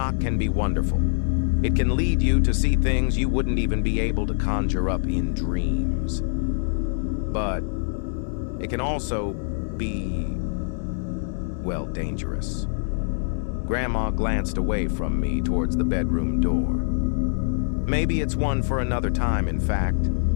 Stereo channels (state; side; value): silent; right; digital silence